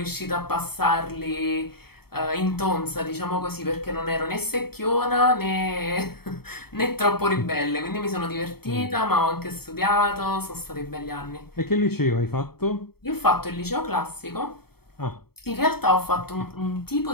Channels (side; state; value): right; late; 0.95 ms